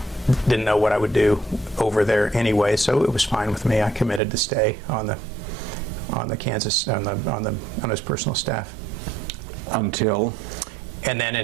know what I would do over there anyway, so it was fine with me. I committed to stay on the Kansas, on his personal staff. Until? And then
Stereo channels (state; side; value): drops out; left; at 4.2 s